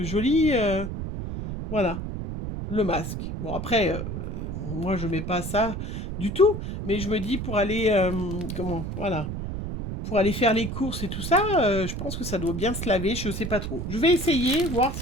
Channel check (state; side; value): noise; right; rumble, 5 dB below the sound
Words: joli... voilà, le masque. Bon, après, moi, je mets pas ça du tout, mais je me dis pour aller... voilà, pour aller faire les courses et tout ça, je pense que ça doit bien se laver, je sais pas trop. Je vais essayer, voir